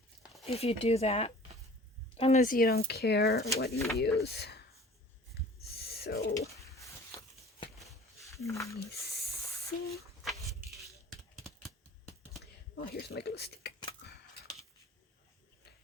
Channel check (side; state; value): both; normal; correlation 0.46